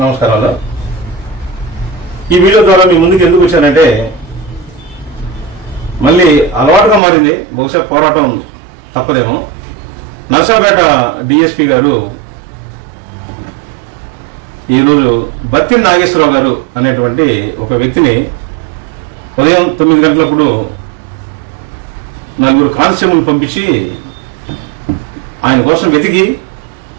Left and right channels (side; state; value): left; drops out; at 7.0 s